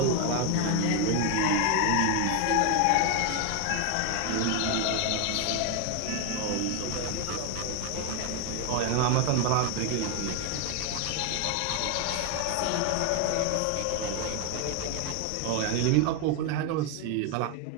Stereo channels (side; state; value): both; different; correlation 0.01